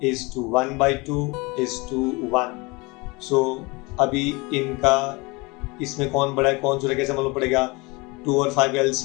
is to 1 by 2 is to 1. So अभी इनका इसमें कौन बड़ा है कौन छोटा कैसे मालूम पड़ेगा? 2 और 5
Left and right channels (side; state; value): right; quieter; 26.0 dB